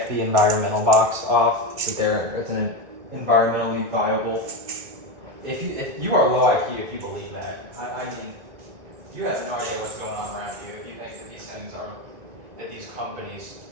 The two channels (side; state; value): left; late; 1.9 ms